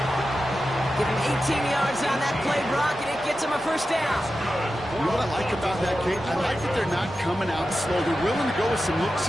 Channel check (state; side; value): normal; both; correlation 0.92